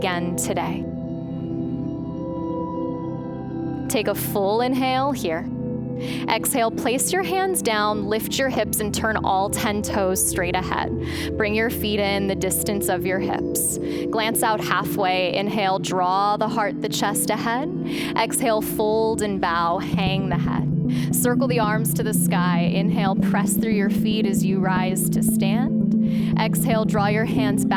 today. Take a full inhale here. Exhale, place your hands down, lift your hips, and turn all 10 toes straight ahead. Bring your feet in the distance of your hips. Glance out halfway. Inhale, draw the heart, the chest ahead. Exhale, fold and bow, hang the head. Circle the arms to the sky. Inhale, press through your feet as you rise to stand. Exhale, draw your hands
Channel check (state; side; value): identical; both; correlation 1.00